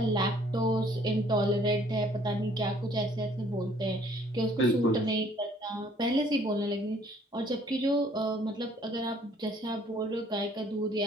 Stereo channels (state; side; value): normal; both; correlation 0.60